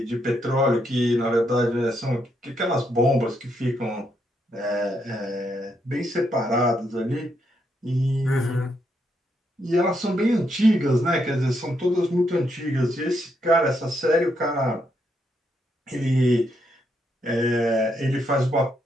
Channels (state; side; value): normal; both; correlation 0.78